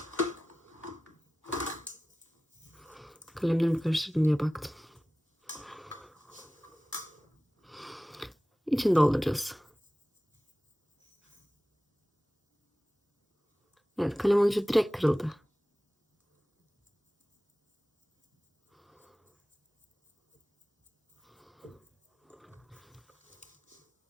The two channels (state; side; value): normal; both; correlation 0.96